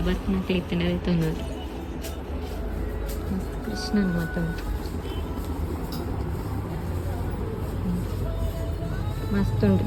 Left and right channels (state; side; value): identical; both; correlation 1.00